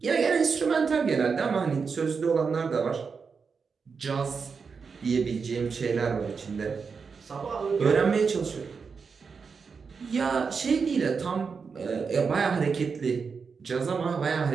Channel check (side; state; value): left; quieter; 5.4 dB